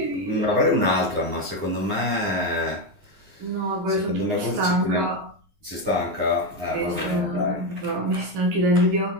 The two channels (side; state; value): left; late; 9.7 ms